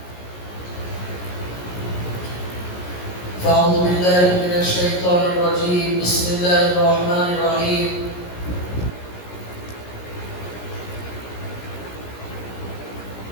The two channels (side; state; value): right; late; 17 ms